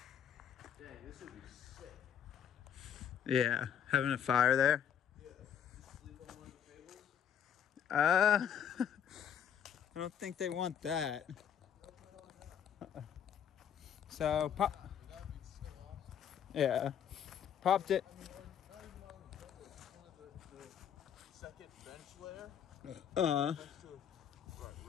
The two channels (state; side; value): quieter; right; 8.7 dB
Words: Dang, this would be sick. Yeah, having a fire there. I don't think they want that. So, pop. Yeah, popped it. Second bench layer.